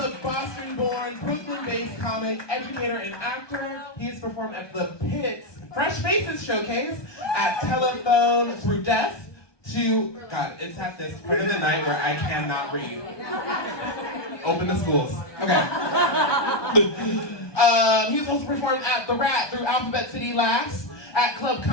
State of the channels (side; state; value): right; late; 1.2 ms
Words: Boston-born, Brooklyn-based comic, educator, and actor. He has performed at the Pitts Fresh Faces Showcase, at Telephone Through Death, to, God, it's at this part of the night where I cannot read. Open the schools. Okay. He's also performed at The Rat through Alphabet City Laughs, at Club